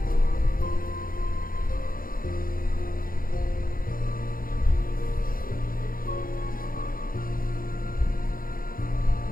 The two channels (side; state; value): right; late; 0.41 ms